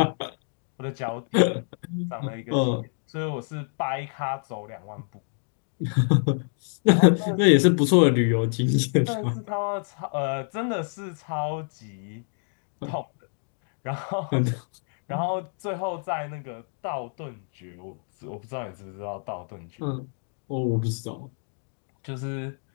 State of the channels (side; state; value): right; silent; 60 dB below the other